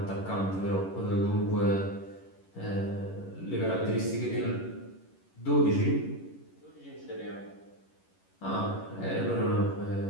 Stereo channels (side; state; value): right; late; 11 ms